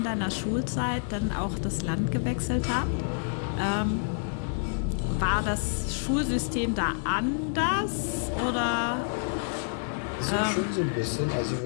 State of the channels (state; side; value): silent; right; 57 dB below the other